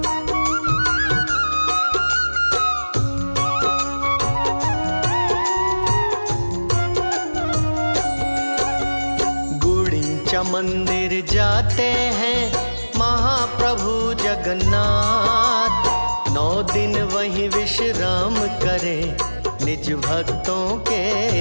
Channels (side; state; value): both; inverted; correlation -1.00